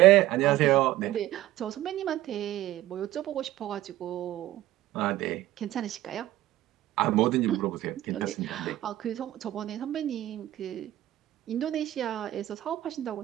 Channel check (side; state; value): left; quieter; 14.9 dB